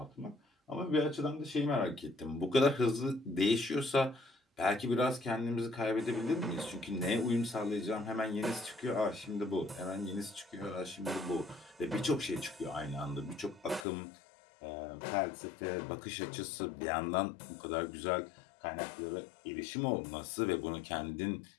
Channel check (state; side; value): drops out; right; at 13.9 s